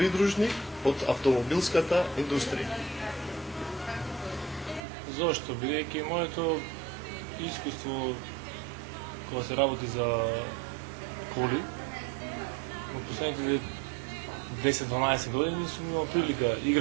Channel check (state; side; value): drops out; left; at 4.8 s